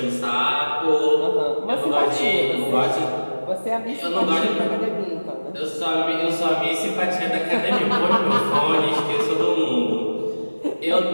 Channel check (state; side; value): inverted; both; correlation -1.00